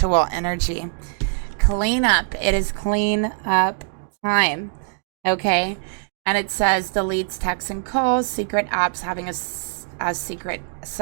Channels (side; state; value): left; silent; digital silence